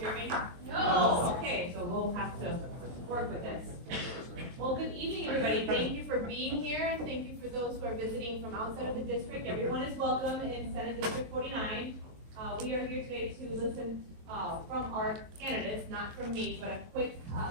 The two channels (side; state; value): left; late; 23 ms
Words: me? No. Okay, so we'll have to work with this. Well, good evening, everybody. Thank you for being here, and thank you for those who are visiting from outside of the district. Everyone is welcome in Senate District 49. We are here today to listen from our candidates, not from me, but